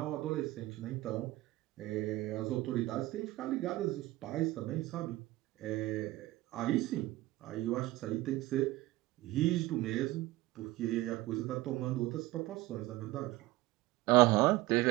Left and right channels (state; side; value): quieter; left; 18.2 dB